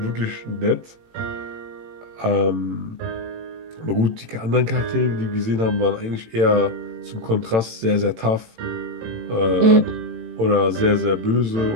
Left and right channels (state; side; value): late; left; 18 ms